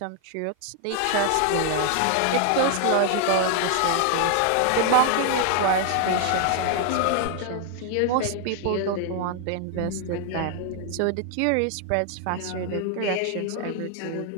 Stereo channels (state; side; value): different; both; correlation 0.00